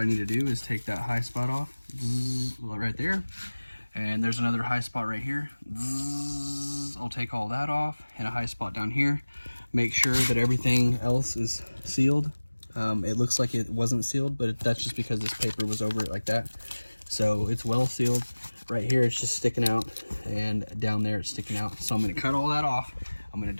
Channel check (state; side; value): inverted; both; correlation -1.00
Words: need to do is take that high spot off, right there. And there's another high spot right here. I'll take all that off, and a high spot down here. Make sure that everything else is sealed. It looks like it wasn't sealed, but that's just because this paper was over it like that. So it's well sealed. Right here it's just sticking out, and down there it's sticking out. So I'm gonna cut all that off. I'm gonna